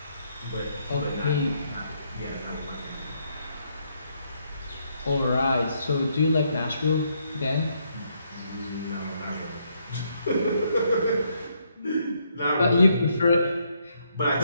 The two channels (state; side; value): inverted; both; correlation -0.74